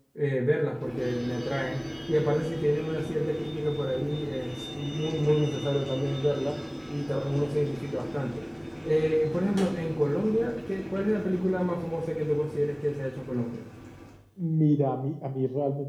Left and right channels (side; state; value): both; identical; correlation 1.00